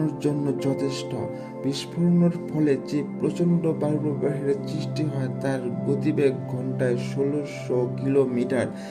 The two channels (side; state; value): both; identical; correlation 1.00